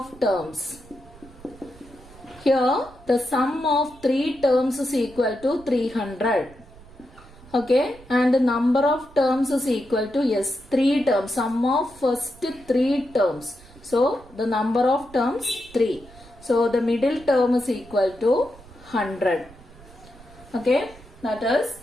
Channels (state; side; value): noise; right; rumble, 22 dB below the sound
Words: terms. Here the sum of 3 terms is equal to 300. Okay, and the number of terms is equal to, yes, 3 terms. Sum of first 3 terms. So the number of terms 3. So the middle term is equal to 100. Okay, that is